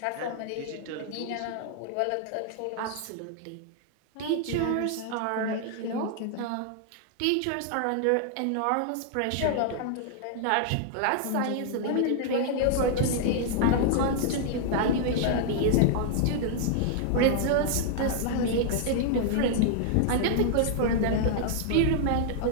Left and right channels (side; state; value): both; different; correlation -0.01